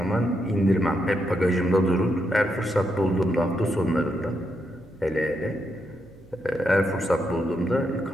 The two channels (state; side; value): noise; right; hum, 26 dB below the sound